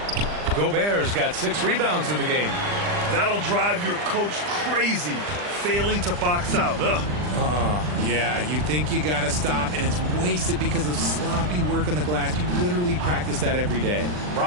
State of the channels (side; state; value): left; late; 40 ms